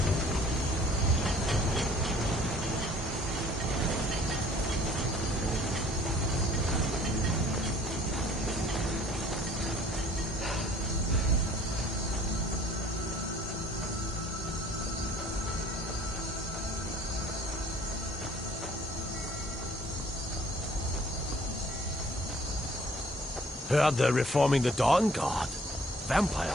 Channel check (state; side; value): normal; both; correlation 0.55